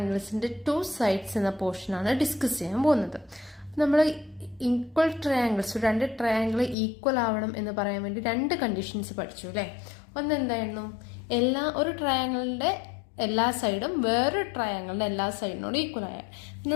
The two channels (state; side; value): drops out; right; at 6.8 s